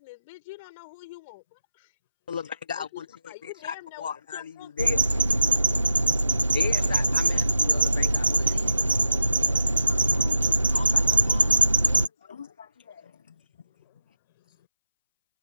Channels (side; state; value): both; inverted; correlation -0.89